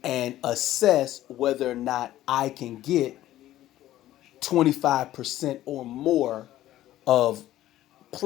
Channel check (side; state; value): right; quieter; 14.0 dB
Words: and assess whether or not I can get 25% or more of